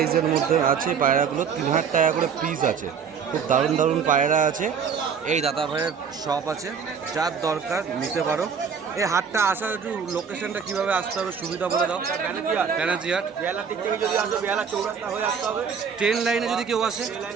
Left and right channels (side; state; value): left; quieter; 6.6 dB